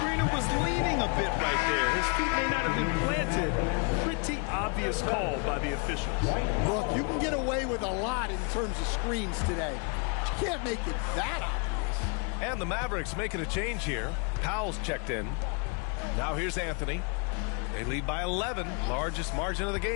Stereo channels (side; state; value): right; quieter; 34.6 dB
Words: was leaning a bit right there. His feet may not have been planted. Pretty obvious call by the officials. Look, you can get away with a lot in terms of screens today. You can't make it that obvious. And the Mavericks making a change here. Powell's checked in. Now here's Anthony. They lead by 11, largest margin of the